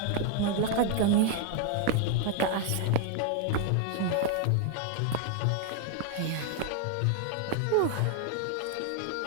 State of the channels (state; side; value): different; both; correlation 0.00